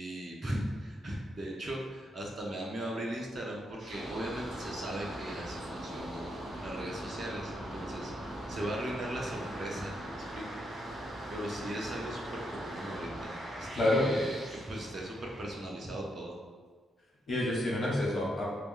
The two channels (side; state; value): both; normal; correlation 0.80